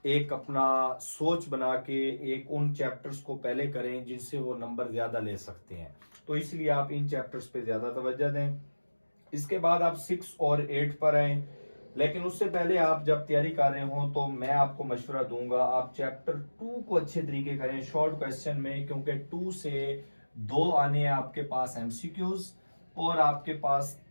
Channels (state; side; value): inverted; both; correlation -1.00